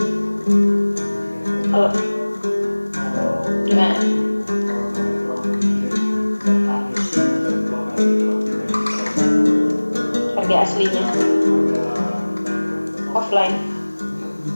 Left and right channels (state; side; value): inverted; both; correlation -1.00